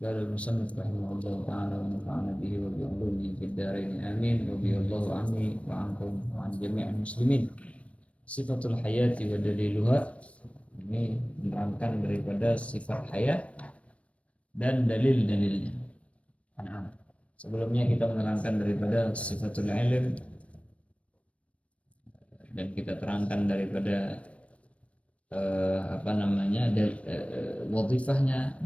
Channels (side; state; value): right; late; 0.063 ms